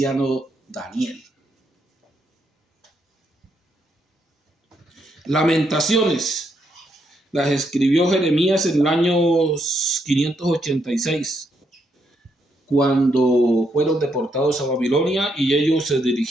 Daniel. Lamentaciones las escribió Jeremías en el año 586, cuando fueron deportados a Babilonia y ellos se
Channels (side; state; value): both; normal; correlation 0.77